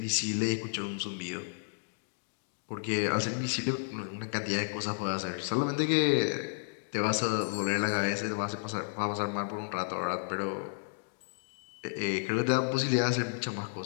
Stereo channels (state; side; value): silent; right; digital silence